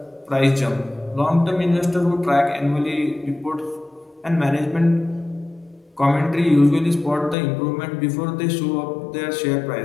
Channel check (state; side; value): drops out; right; at 7.4 s